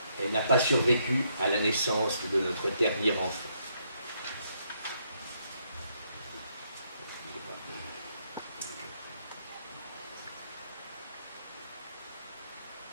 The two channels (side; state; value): both; inverted; correlation -0.74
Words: Elle n'a pas survécu à la naissance de notre dernier enfant.